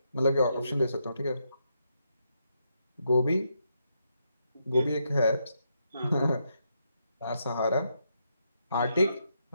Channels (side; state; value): both; inverted; correlation -0.80